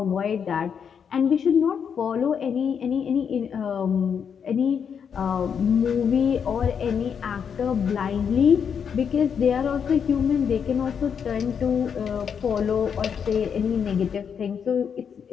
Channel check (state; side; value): quieter; right; 7.2 dB